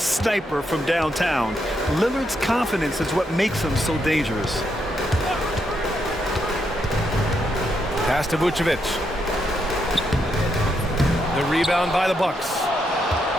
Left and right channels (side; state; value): both; normal; correlation 0.79